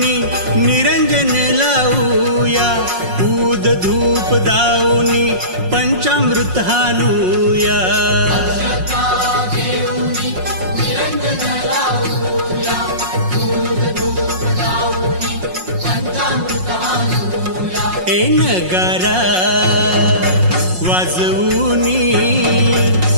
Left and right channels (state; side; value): late; left; 5.5 ms